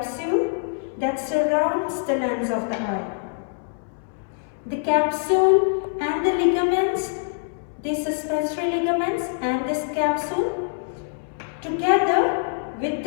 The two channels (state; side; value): silent; right; 62 dB below the other